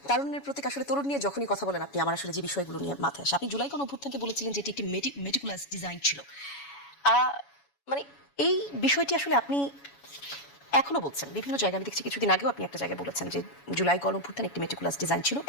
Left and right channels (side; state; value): right; late; 7.1 ms